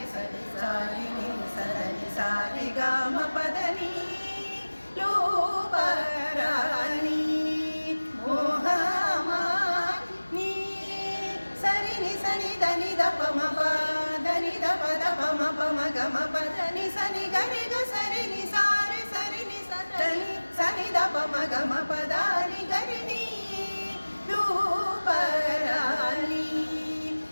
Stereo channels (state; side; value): inverted; both; correlation -1.00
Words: దని సని గరి గ సరి ని సారి సరి ని సని ద ప మ గ మ ప ద ని గ